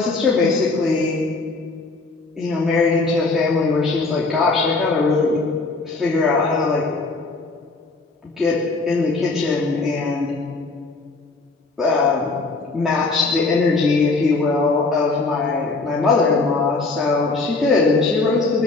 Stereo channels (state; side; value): quieter; right; 3.6 dB